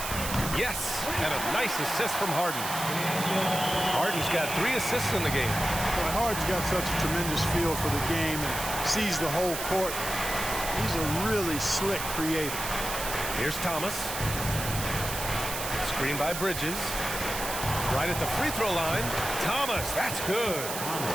Yes, and a nice assist from Harden. Harden's got 3 assists in the game. Boy, Harden's got such a tremendous feel for the game and sees the whole court. He's a really slick creator. Here's Thomas. Screen by Bridges. Right at the free throw line. Thomas, that's good.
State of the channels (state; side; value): noise; right; hiss, 5 dB below the sound